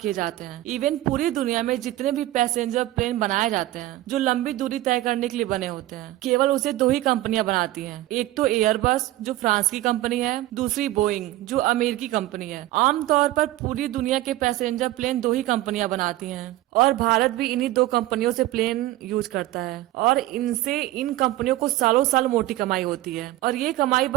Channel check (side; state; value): left; quieter; 16.0 dB